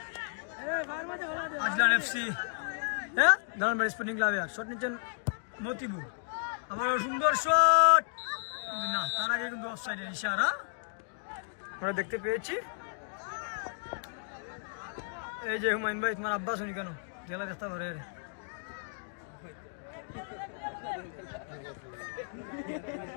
আজলান এফসি হ্যাঁ দালানবাড়ি স্পোর্টিং ক্লাবে শট নিচ্ছেন মতিবুর আবার সুন্দর শট কিন্তু না তার আগে কিন্তু অফসাইডের ইশারা আমরা দেখতে পেয়েছি এই যে হুমায়ুন ভাই তোমার আব্বা শুনি কেন গেলা দেখতে পারে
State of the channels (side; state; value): right; silent; digital silence